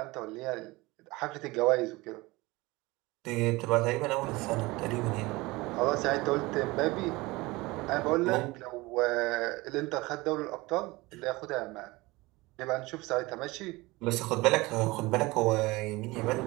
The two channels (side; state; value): left; quieter; 21.9 dB